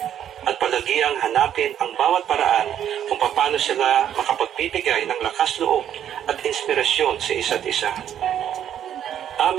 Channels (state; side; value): quieter; left; 10.1 dB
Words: at palagiang hanapin ang bawat paraan kung paano sila makapagbibigay ng lakas loob at inspirasyon sa isa't isa.